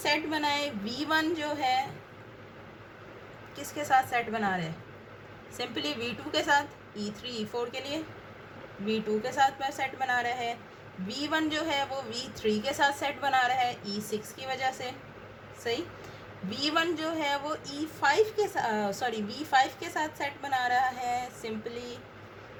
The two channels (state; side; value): identical; both; correlation 1.00